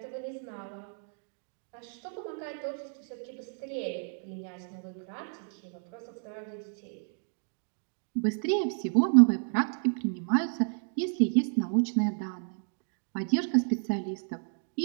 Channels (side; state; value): left; silent; 57 dB below the other